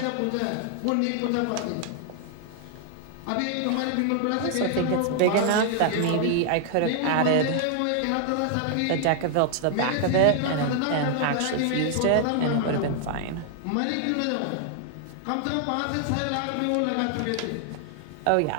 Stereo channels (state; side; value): different; both; correlation 0.00